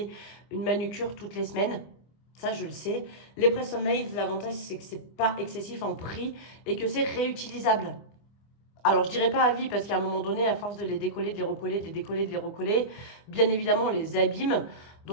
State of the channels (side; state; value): right; late; 25 ms